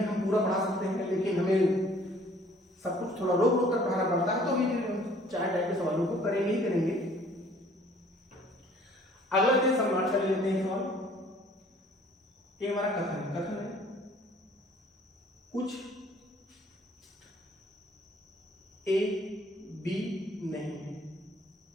हम पूरा पढ़ा सकते हैं, लेकिन हमें सब कुछ थोड़ा रोक रोक कर पढ़ाना पड़ता है, तो भी 4 टाइप के सवालों को करेंगे ही करेंगे। अगला दिन सम्राट कर लेते हैं सवाल। ये हमारा कथन है, कुछ ए बी नहीं है,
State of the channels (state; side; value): normal; both; correlation 0.56